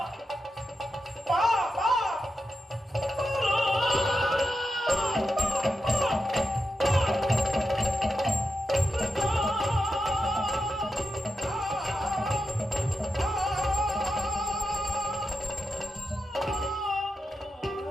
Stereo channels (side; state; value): both; normal; correlation 0.88